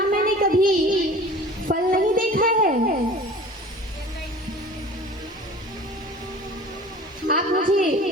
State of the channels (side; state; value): both; normal; correlation 0.42